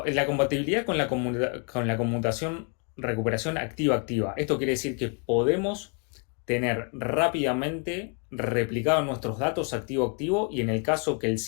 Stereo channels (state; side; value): quieter; right; 39.0 dB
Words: con la conmutación recuperación activa-activa. Esto quiere decir que podemos tener rápidamente replicados nuestros datos activo-activo y en el caso que el